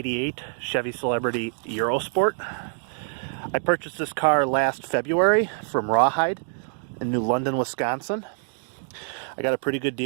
Chevy Celebrity Eurosport. I purchased this car last February from Rawhide in New London, Wisconsin. I got a pretty good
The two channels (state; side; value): silent; left; digital silence